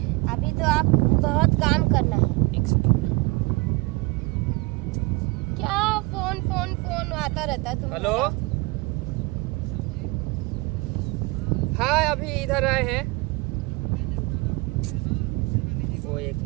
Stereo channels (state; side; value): quieter; left; 24.5 dB